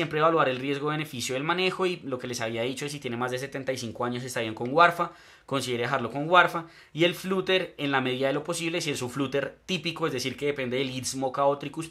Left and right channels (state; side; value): identical; both; correlation 1.00